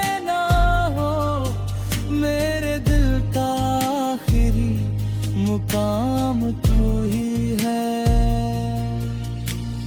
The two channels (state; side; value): identical; both; correlation 1.00